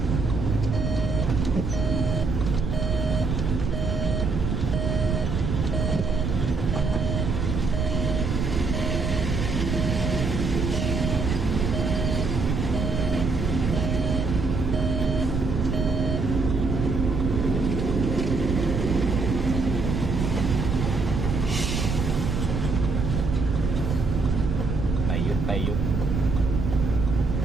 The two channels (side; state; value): right; noise; rumble, 1 dB below the sound